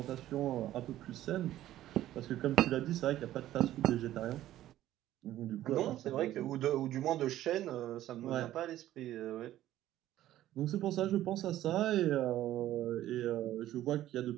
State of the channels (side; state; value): left; quieter; 13.6 dB